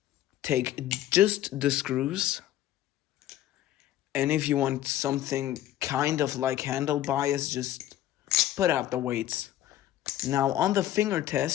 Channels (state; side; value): quieter; right; 13.0 dB